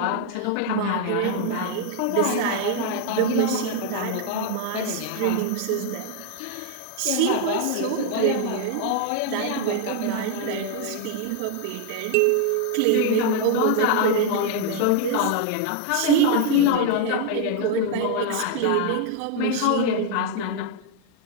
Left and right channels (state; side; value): different; both; correlation 0.00